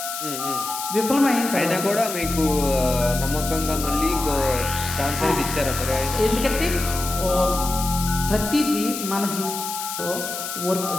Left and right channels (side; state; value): left; noise; hiss, 6 dB below the sound